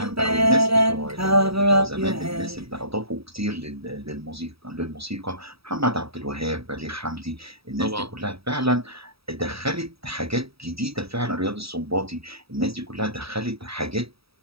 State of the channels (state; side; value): late; left; 0.77 ms